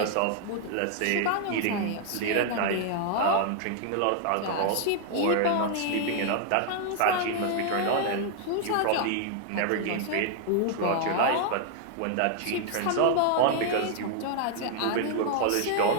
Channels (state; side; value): different; both; correlation 0.00